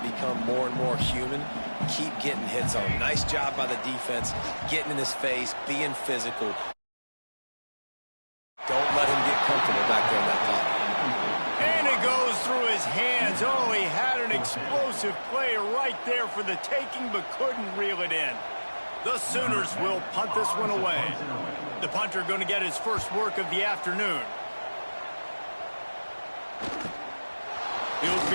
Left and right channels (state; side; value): inverted; both; correlation -1.00